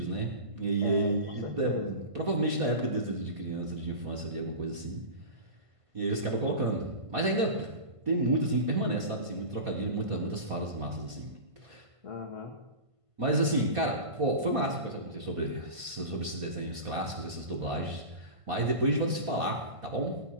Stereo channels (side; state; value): left; late; 1.5 ms